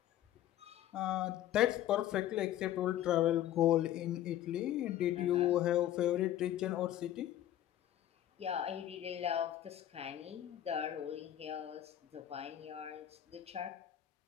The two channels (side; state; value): right; quieter; 12.2 dB